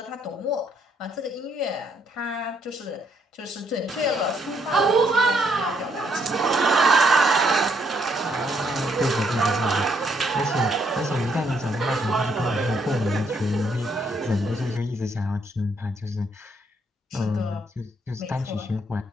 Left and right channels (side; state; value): both; normal; correlation 0.71